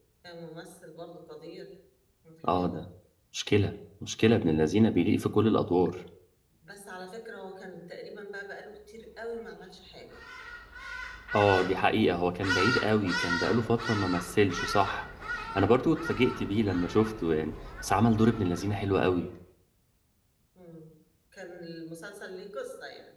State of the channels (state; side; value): identical; both; correlation 1.00